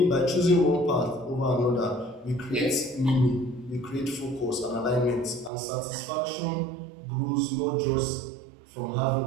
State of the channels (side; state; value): left; drops out; at 5.5 s